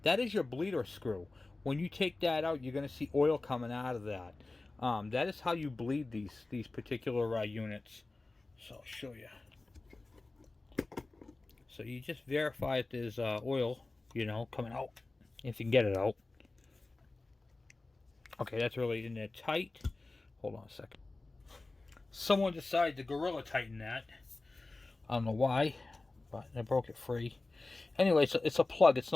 that is your bleeder screw. When you take that out, you're going to see oil coming out of that. That is how you bleed these particular units. So I'll show you. So you just verify that there's oil, you know, coming out, if you can get it out. Okay, that's really in there tight. Hold on a second. Someone decided to Gorilla Tighten that. I don't know why, but I broke it free. Anyway, so it's a plug. It's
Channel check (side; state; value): right; quieter; 3.2 dB